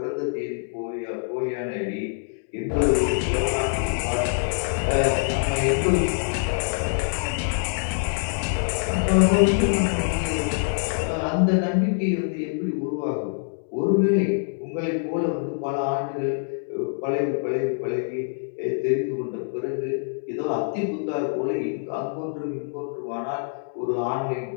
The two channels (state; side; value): silent; right; digital silence